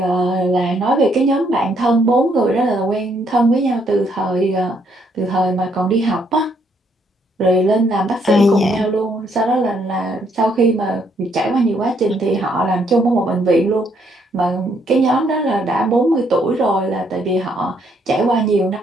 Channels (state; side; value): normal; both; correlation 0.71